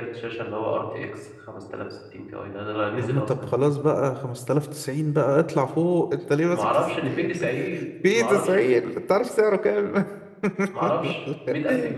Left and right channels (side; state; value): both; identical; correlation 1.00